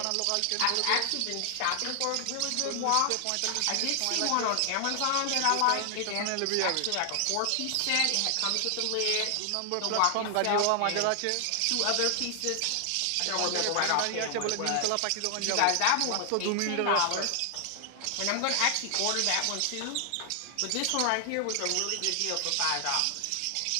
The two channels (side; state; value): both; different; correlation 0.00